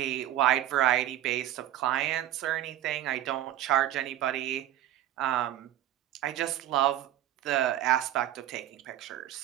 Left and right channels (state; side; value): quieter; left; 12.8 dB